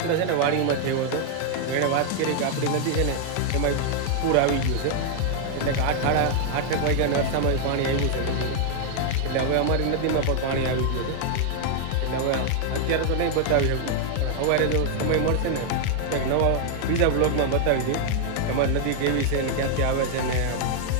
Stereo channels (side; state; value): both; different; correlation 0.00